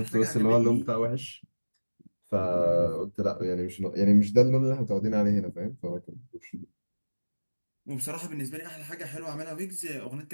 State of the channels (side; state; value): both; inverted; correlation -1.00